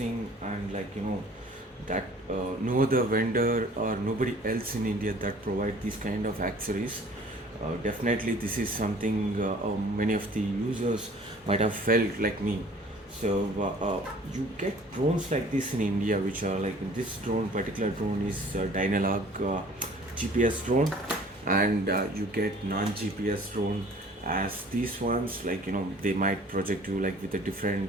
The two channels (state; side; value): normal; both; correlation 0.51